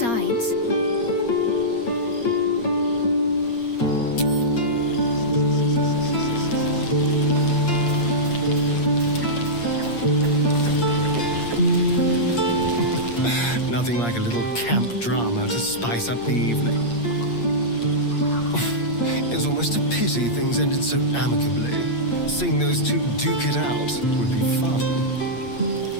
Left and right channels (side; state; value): right; late; 8.5 ms